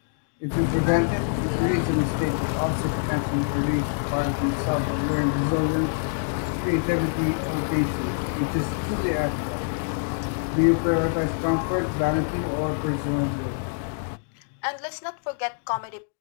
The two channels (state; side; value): silent; right; digital silence